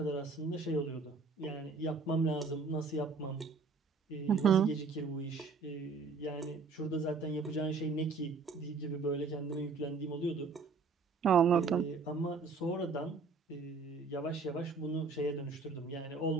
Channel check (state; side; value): quieter; left; 4.4 dB